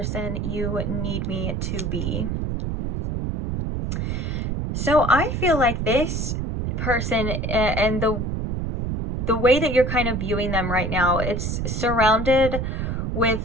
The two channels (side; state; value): right; noise; rumble, 2 dB below the sound